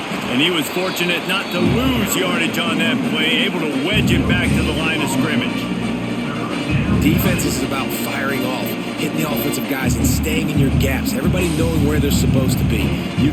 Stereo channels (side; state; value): both; identical; correlation 1.00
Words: And he was fortunate not to lose yardage on that play, able to wedge it back to the line of scrimmage. Defense is about firing off, hitting the offensive guys, and staying in your gaps. Everybody knowing where they're supposed to be. You